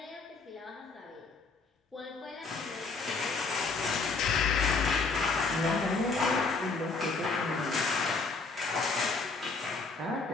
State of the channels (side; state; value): right; quieter; 4.1 dB